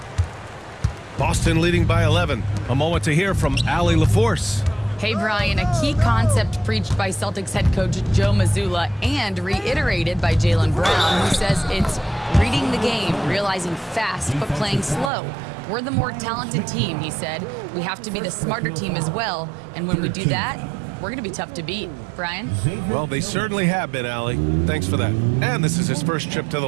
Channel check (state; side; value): drops out; left; at 15.1 s